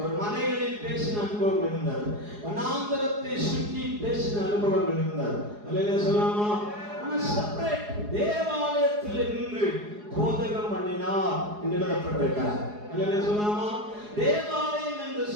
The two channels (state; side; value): late; left; 4.8 ms